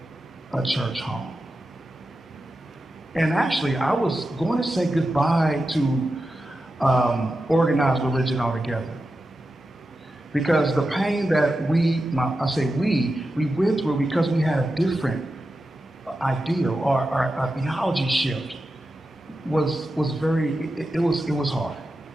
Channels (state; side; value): normal; both; correlation 0.91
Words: a church home. And actually, I was going to say goodbye to organized religion altogether. Because the pain that we went through because we had a different ideal or our theology shift was hard.